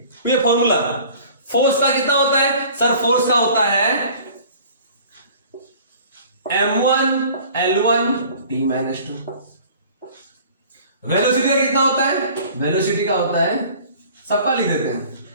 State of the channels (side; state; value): both; inverted; correlation -0.48